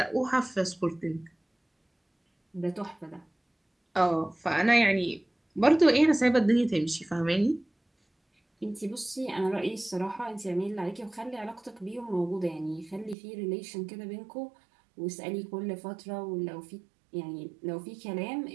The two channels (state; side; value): drops out; left; at 13.2 s